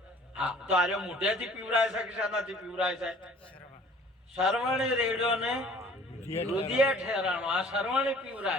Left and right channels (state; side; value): normal; both; correlation 0.52